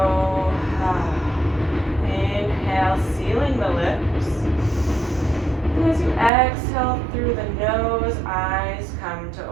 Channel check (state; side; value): drops out; left; at 6.3 s